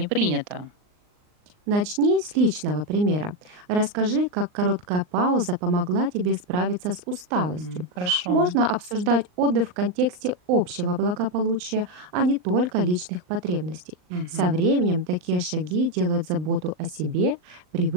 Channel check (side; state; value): left; late; 39 ms